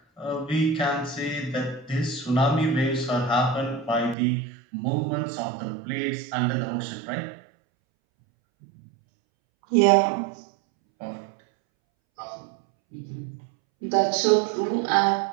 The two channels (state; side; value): drops out; left; at 4.2 s